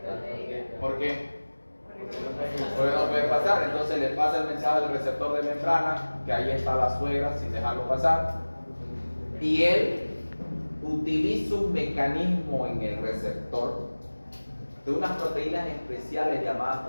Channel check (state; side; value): inverted; both; correlation -1.00